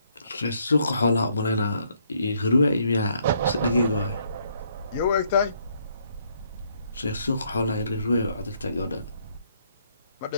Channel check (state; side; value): inverted; both; correlation -0.70